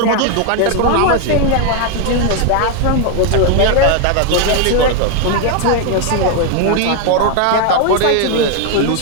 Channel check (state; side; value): different; both; correlation 0.00